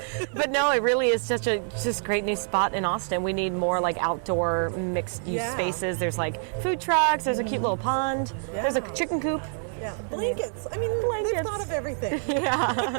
But no, it really is such a great new spot in Austin. We need more like outdoor mixed use spaces. There's like food trucks. There's a cute little pond. Yeah. There's a chicken coop. Yeah, blankets. I mean, they've thought of everything.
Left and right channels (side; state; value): left; silent; 61 dB below the other